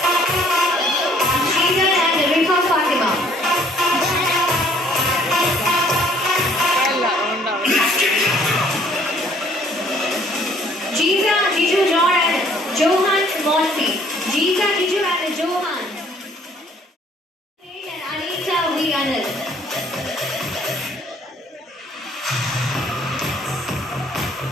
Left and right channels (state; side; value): normal; both; correlation 0.60